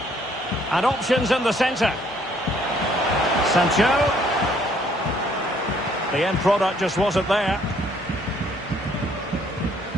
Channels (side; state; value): both; normal; correlation 0.64